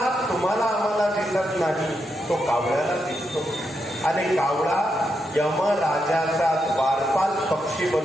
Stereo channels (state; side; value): normal; both; correlation 0.83